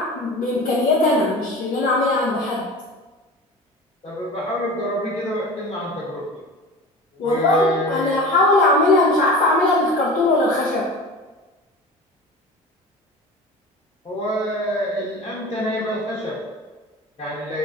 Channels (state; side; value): normal; both; correlation 0.35